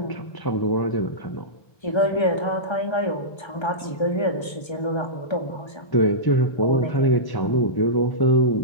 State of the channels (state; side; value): late; right; 1.3 ms